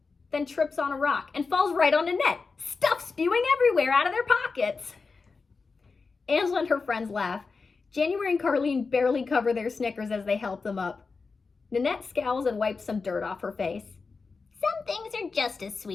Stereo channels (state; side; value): quieter; right; 4.5 dB